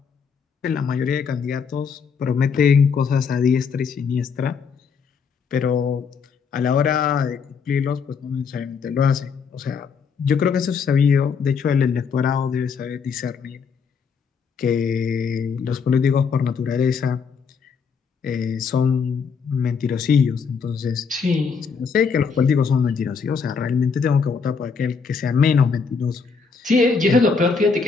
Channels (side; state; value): right; quieter; 5.7 dB